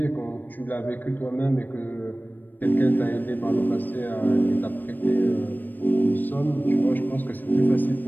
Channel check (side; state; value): right; late; 0.090 ms